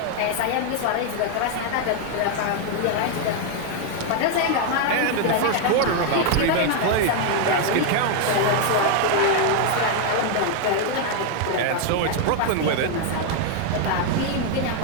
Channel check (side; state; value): both; different; correlation 0.00